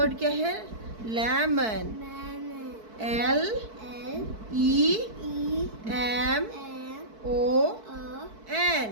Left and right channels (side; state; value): left; late; 4.6 ms